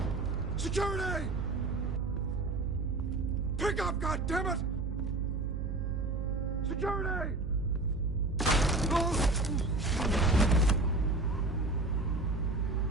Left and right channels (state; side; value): noise; right; hum, 1 dB below the sound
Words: Security! Pick up, goddammit! Security!